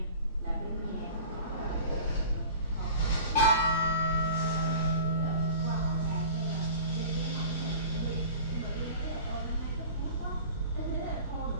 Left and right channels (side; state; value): both; inverted; correlation -0.41